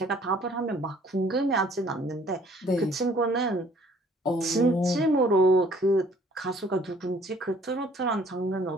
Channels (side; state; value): both; normal; correlation 0.58